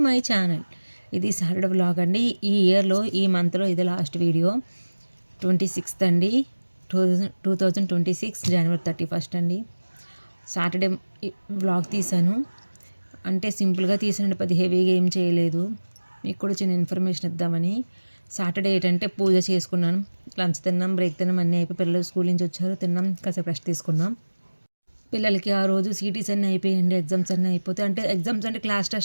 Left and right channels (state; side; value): inverted; both; correlation -1.00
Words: my channel. ఇది సాటర్డే వ్లాగ్ అండి. ఈ ఇయర్లో ఈ మంత్లో ఇది లాస్ట్ వీడియో. 26th అండి, 2026 జనవరి 31 అండి. సాటర్డే వ్లాగ్ తీశాను. అంటే సింపుల్గా తీసానండి, పెద్ద హెవీగా ఏం చేయలేదు. మీకు కూడా చిన్న ఇన్ఫర్మేషన్ ఇద్దామని. సాటర్డే ఏంటంటే పూజ చేసుకున్నాను, లంచ్ తిన్నాం, బ్రేక్ తిన్నాం, అన్నీ అయిపోయి పిల్లలు స్కూల్ నుంచి వచ్చారు, తిన్నాం, కాసేపు రెస్ట్ తీసుకున్నాం. పిల్లలకి ఆ రోజు సిటీస్ అన్నీ అయిపోయాయండి, ఎగ్జామ్స్ అన్నీ అయిపోతే, అంటే ఎగ్జామ్స్ అంటే క్లాస్